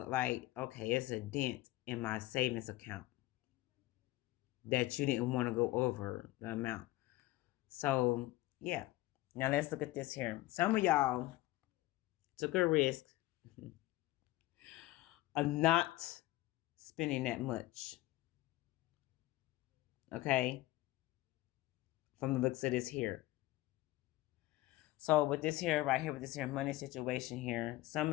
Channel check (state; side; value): quieter; right; 17.6 dB